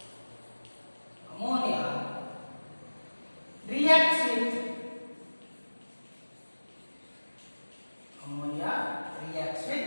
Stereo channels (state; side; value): inverted; both; correlation -1.00